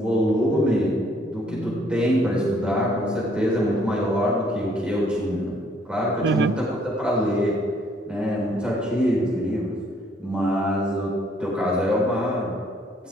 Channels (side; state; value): both; normal; correlation 0.64